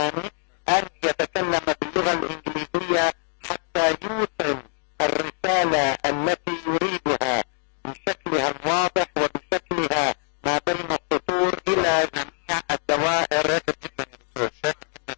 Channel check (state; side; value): silent; right; digital silence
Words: أن يتكلم باللغة الإنجليزية حتى يوصل الرسالة التي يريدها بشكلها الواضح وبشكلها ما بين السطور إلى جميع الدوائر. شاكر جدا يا دكتور، شاكر جدا